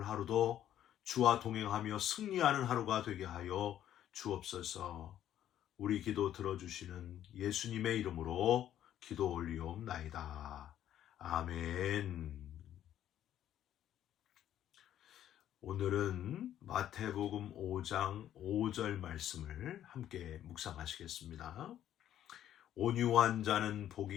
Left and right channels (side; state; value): right; quieter; 11.3 dB